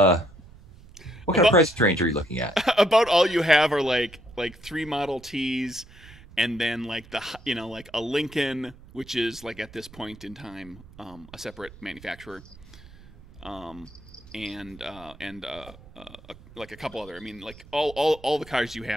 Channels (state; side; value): noise; right; rumble, 21 dB below the sound